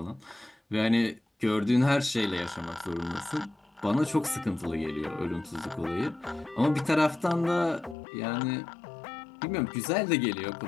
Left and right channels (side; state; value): right; drops out; at 8.0 s